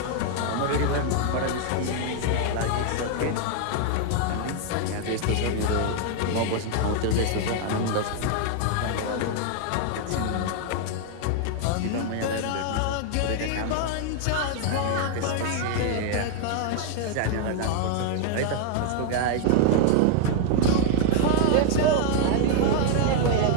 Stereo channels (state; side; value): different; both; correlation 0.00